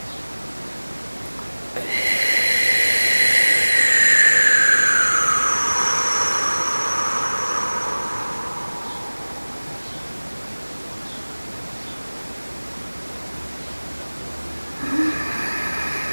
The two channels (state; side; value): inverted; both; correlation -1.00